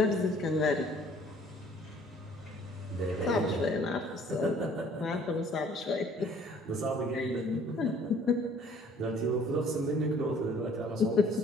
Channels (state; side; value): normal; both; correlation 0.56